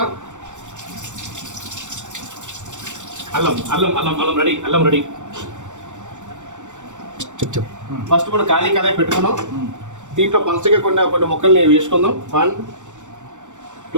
అల్లం అల్లం అల్లం అల్లం రెడీ. అల్లం రెడీ. ఫస్ట్ మనం ఖాళీ కడాయి పెట్టుకున్నాం. దీంట్లో పలచగా కొన్ని ముక్కల్ని వేసుకుందాం. 1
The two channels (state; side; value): late; left; 0.85 ms